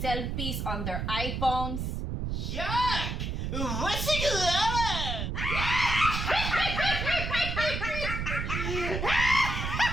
on their iPhones. Yuck! What's it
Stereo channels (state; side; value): noise; right; rumble, 2 dB below the sound